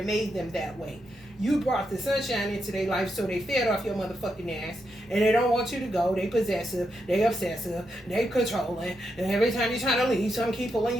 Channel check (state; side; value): normal; both; correlation 0.83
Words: made them that way. You brought the sunshine into their life, so they fed off your motherfucking ass, and they don't want you to go. They possessive, they obsessive, they controlling, and every time you're trying to leave, some keep pulling